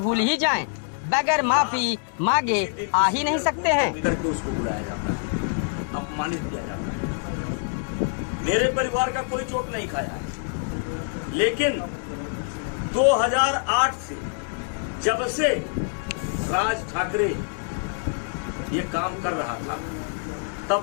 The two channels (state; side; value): silent; right; 61 dB below the other